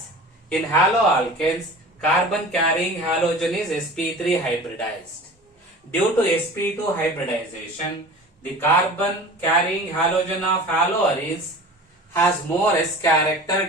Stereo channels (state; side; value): normal; both; correlation 0.38